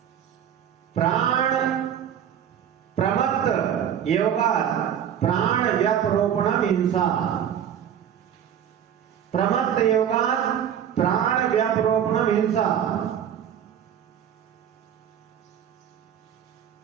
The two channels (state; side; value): quieter; left; 9.3 dB